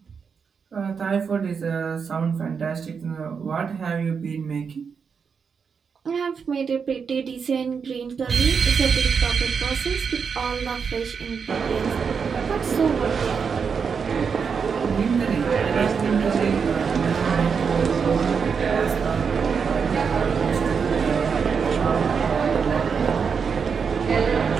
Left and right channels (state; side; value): quieter; left; 6.1 dB